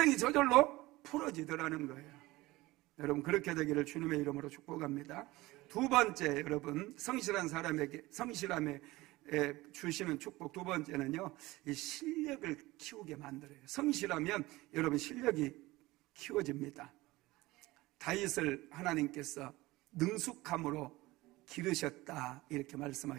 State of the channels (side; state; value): left; quieter; 19.7 dB